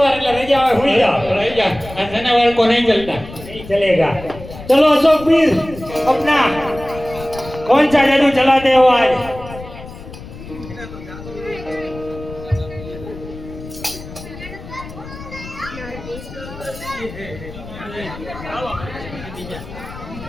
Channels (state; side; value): noise; left; rumble, 14 dB below the sound